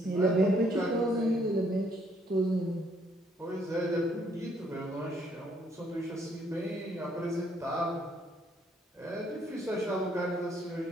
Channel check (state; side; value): normal; both; correlation 0.68